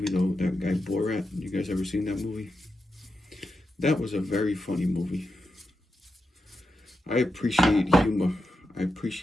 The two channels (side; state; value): both; normal; correlation 0.88